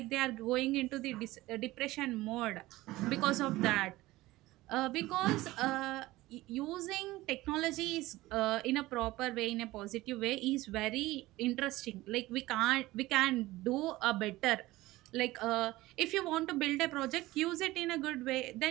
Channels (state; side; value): quieter; left; 18.2 dB